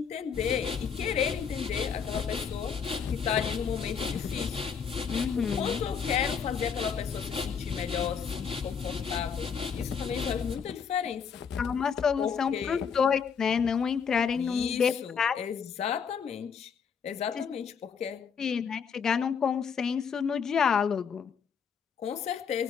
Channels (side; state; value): right; quieter; 6.6 dB